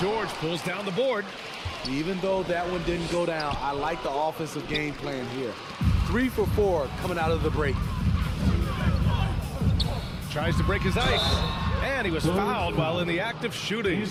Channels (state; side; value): identical; both; correlation 1.00